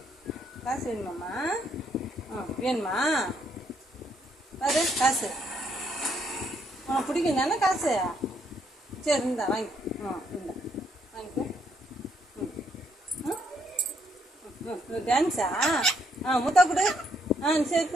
காசு வேணுமாம்மா? வேணுமா? பாரு காசு உனக்கு பிடிக்கும் தானே காசு? சரி இந்தா வாங்கி இந்தா வாங்கிக்கோ. டான்ஸா? முத்தா கொடு. சரி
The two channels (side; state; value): both; normal; correlation 0.72